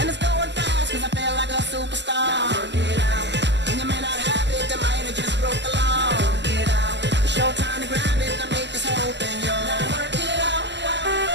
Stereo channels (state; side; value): late; left; 0.51 ms